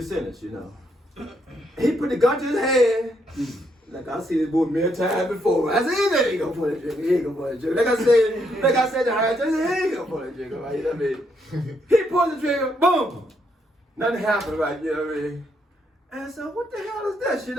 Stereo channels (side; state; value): both; normal; correlation 0.75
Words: sentence, He put the gun to his head. Like I see this boy many times before. I said, he ain't gonna pull that trigger. He ain't gonna pull that trigger. Like I said to her, I said, he ain't gonna pull that trigger, right? You know what I mean? He pulled the trigger, boom. Nothing happened, right? You know what I mean? And so, what the hell is this? You